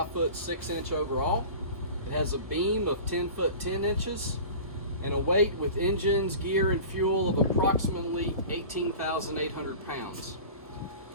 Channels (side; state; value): left; late; 1.3 ms